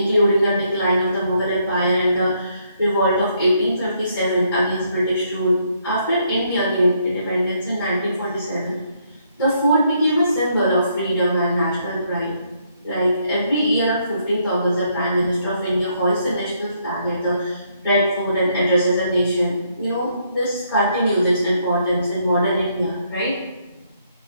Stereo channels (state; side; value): inverted; both; correlation -0.72